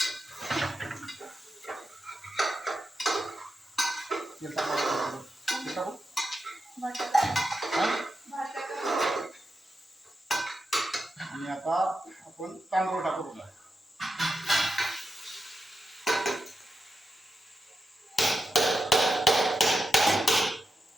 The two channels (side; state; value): both; normal; correlation 0.88